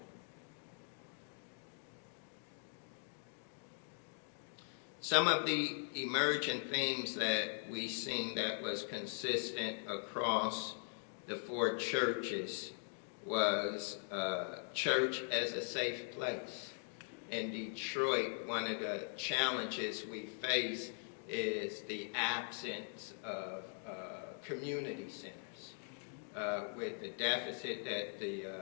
Some of the emergent themes that we seen that was consistent across the four churches was church as a safe place. In Detroit, one of the challenges we face is the absence of community centers. With the deficit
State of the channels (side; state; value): right; silent; 50 dB below the other